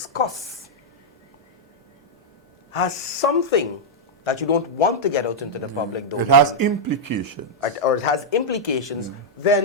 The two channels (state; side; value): normal; both; correlation -0.05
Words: has something that you don't want to get out into the public domain. It has implications. Or it has implications,